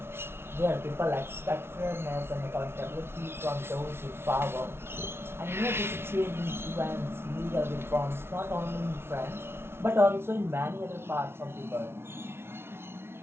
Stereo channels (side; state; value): left; late; 0.12 ms